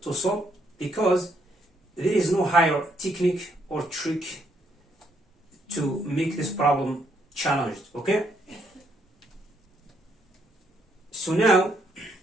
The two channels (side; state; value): both; normal; correlation 0.73